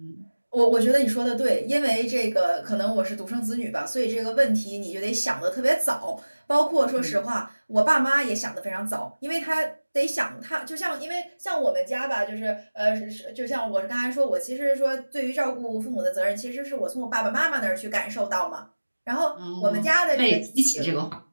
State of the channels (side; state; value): both; inverted; correlation -1.00